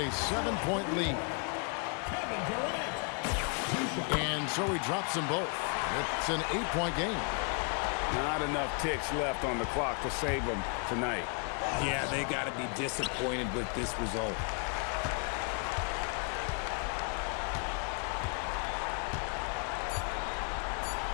7-point lead. And so he drops them both. It's an 8-point game. Not enough ticks left on the clock to save them tonight. Yeah, they got to be disappointed with this result.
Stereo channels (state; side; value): quieter; right; 38.5 dB